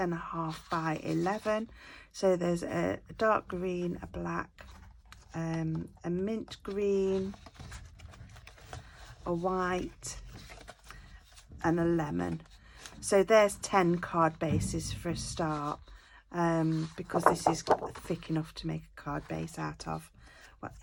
by 11. So there's a dark green, a black, a mint green, a white, and a lemon. So there's 10 card bases for a start, because this is thick enough to make a card base out of. Well,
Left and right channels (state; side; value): identical; both; correlation 1.00